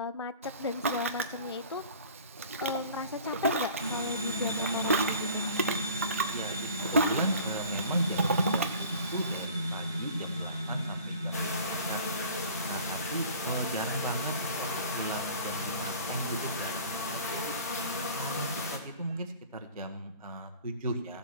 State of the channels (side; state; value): both; inverted; correlation -0.46